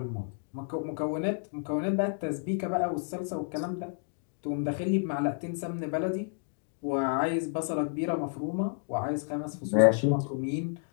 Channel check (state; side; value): silent; right; 57 dB below the other